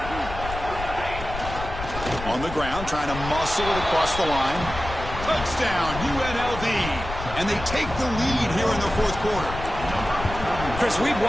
On the ground, trying to muscle it across the line. Touchdown, UNLV. And they take the lead here in the 4th quarter. Chris, we've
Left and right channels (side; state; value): left; noise; rumble, 9 dB below the sound